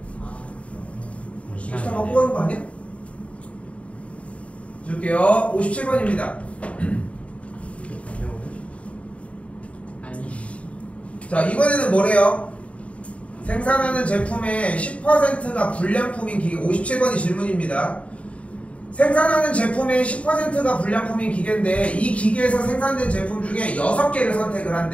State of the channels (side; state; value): right; late; 0.064 ms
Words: 우리 시간 시간 갖고 가는 거 아니야? 줄게요. 57번입니다 아니 자, 이번에는 뭐래요? 생산하는 제품의 10%가 불량품인 기계. 57번이 질문입니다. 생산하는 제품의 10%가 불량품인 기계인데 이 기계에서 생산된 제품 중에 6개를 선택을